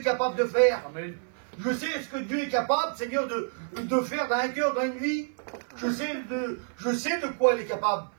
capable de faire. Amen. Je sais ce que Dieu est capable, Seigneur, de faire dans un cœur, dans une vie. Je sais de quoi il est capable.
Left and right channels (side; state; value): left; silent; 59 dB below the other